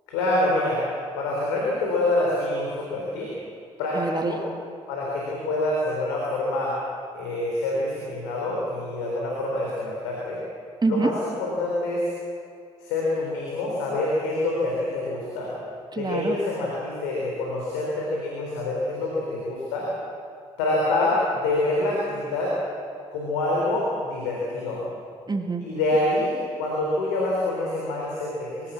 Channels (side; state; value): both; normal; correlation 0.49